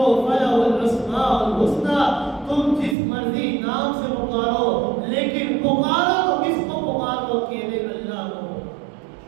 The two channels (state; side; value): drops out; left; at 3.0 s